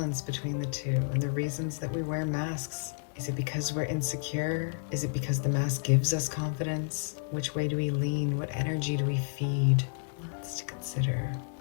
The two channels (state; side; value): silent; right; digital silence